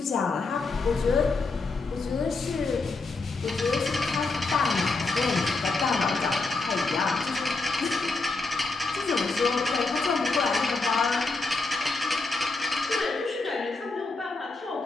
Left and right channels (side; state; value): right; quieter; 3.6 dB